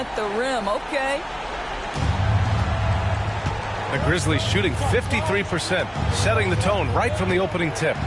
the rim. Okay. The Grizzlies shooting 53%, setting the tone right from the opening tip.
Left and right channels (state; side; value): identical; both; correlation 1.00